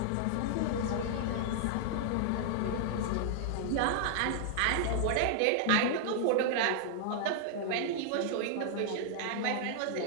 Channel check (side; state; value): both; different; correlation -0.01